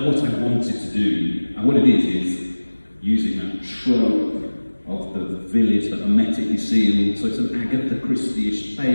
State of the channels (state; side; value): inverted; both; correlation -1.00